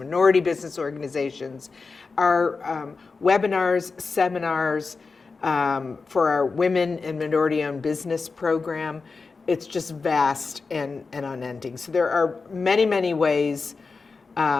business organizations. Our webinars, seminars for our Women and Minority-Owned Business program, it's just vast and unending. So there are many, many ways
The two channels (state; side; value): quieter; right; 4.4 dB